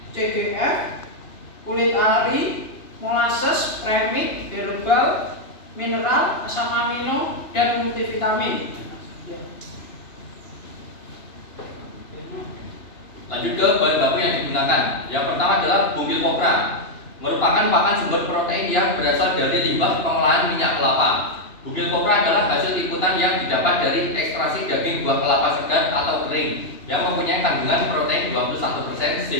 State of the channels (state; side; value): late; right; 2.9 ms